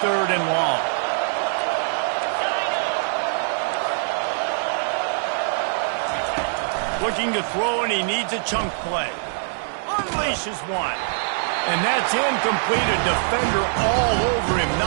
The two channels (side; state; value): left; silent; digital silence